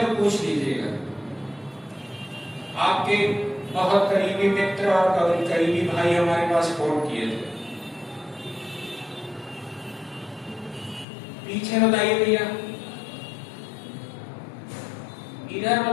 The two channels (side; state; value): right; drops out; at 11.1 s